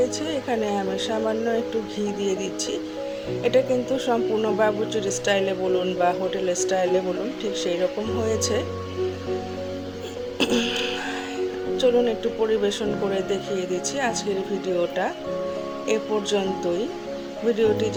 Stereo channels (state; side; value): identical; both; correlation 1.00